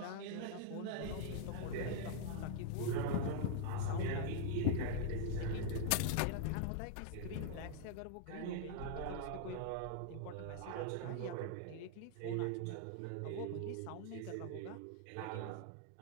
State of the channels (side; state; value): both; different; correlation -0.01